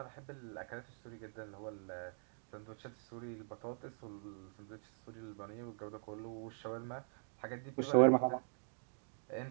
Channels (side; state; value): left; silent; digital silence